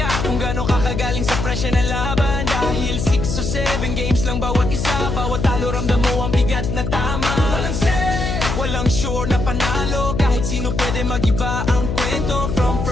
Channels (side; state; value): left; noise; hum, 2 dB below the sound